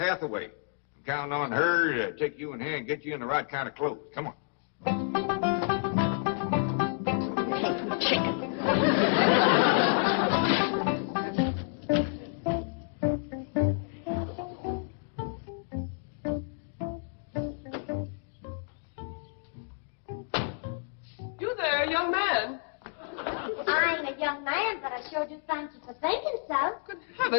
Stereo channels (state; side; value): silent; right; digital silence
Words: I'm counting on her to take you in hand and get you in the right kind of clothes. Come on. Chicken. young man, but I sure do thank you for thinking so. Good